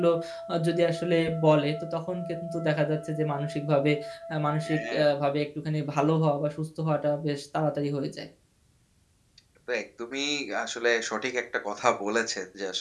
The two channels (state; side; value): identical; both; correlation 1.00